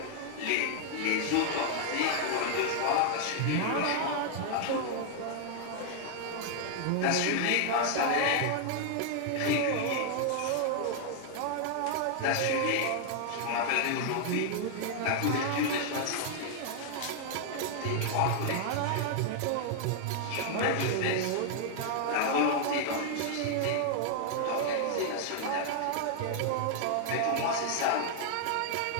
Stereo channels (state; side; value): different; both; correlation 0.00